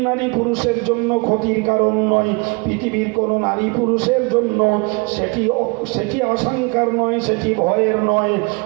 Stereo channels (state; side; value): quieter; left; 30.4 dB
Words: নারী পুরুষের জন্য ক্ষতির কারণ নয়, পৃথিবীর কোনো নারী পুরুষের জন্য সেটি আশঙ্কার নয়, সেটি ভয়ের নয়,